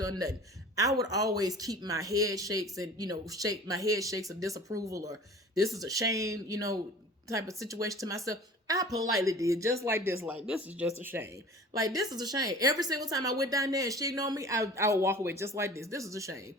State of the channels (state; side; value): normal; both; correlation 0.42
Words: nothing. I would always keep my head shakes and, shake my head shakes of disapproval or this is a shame, type of situation to myself. I politely did just like this. Like, this is just a shame. Like, this is a shame. Every single time I went down there and she ignored me, I would walk away just like this. This is a shame.